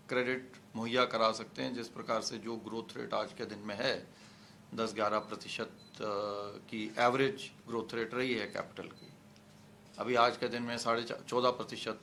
क्रेडिट मुहैया करा सकते हैं। जिस प्रकार से जो ग्रोथ रेट आज के दिन में है 10-11% की एवरेज ग्रोथ रेट रही है कैपिटल की, अभी आज के दिन में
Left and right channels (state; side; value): identical; both; correlation 1.00